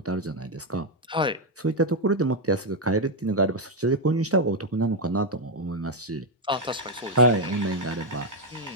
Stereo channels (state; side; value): normal; both; correlation 0.03